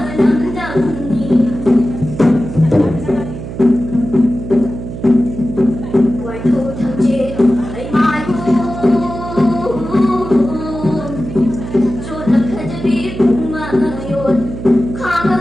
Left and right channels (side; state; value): right; noise; hum, 9 dB below the sound